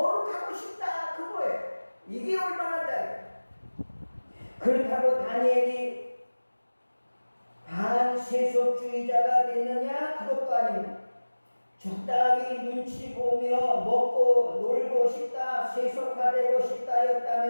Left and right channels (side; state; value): both; inverted; correlation -1.00